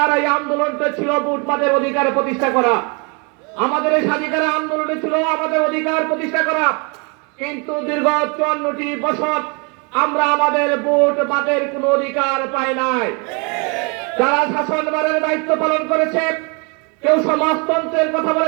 এই আন্দোলনটা ছিল ভোটবাদের অধিকার প্রতিষ্ঠা করা। আমাদের এই স্বাধীনতার আন্দোলনে ছিল আমাদের অধিকার প্রতিষ্ঠা করা। কিন্তু দীর্ঘ 54টি বছর আমরা আমাদের ভোটবাদের কোনো অধিকার পাই নাই। যারা শাসনভারের দায়িত্ব পালন করেছে, কেউ সমাজতন্ত্রের কথা বলে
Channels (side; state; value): left; quieter; 33.1 dB